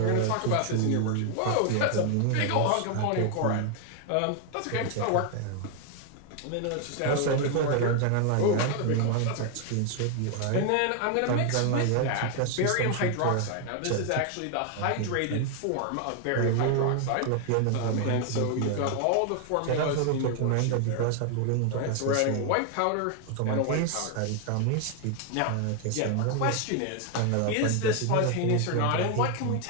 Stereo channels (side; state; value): both; different; correlation 0.00